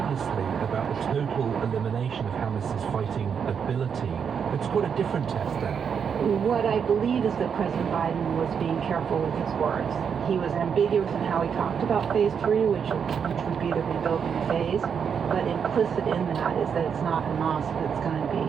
about the total elimination of Hamas's fighting ability. It's quite a different test then. What I believe is that President Biden was being careful with his words. He was ambiguous in how he talked about phase 3, which would be the rebuilding phase, but implicit in that is that it's not Hamas that's going to be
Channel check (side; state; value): left; quieter; 7.0 dB